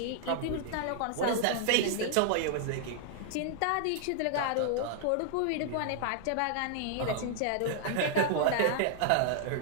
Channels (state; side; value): different; both; correlation -0.01